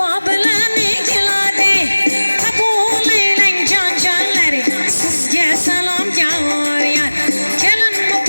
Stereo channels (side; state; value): both; inverted; correlation -1.00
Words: bilan keladi, qabul aylang jon jonlari, sizga salom yor yor. Kelin